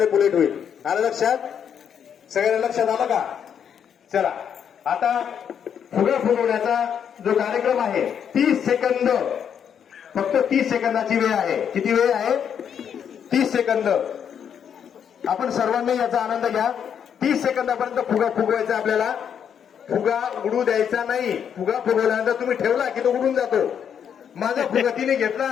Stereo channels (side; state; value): right; quieter; 8.1 dB